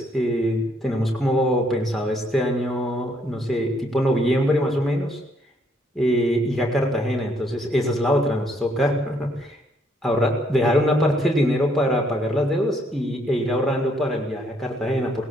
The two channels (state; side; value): normal; both; correlation 0.69